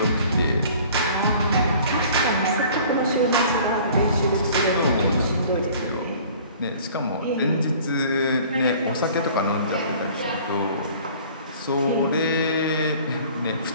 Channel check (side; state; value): both; inverted; correlation -0.49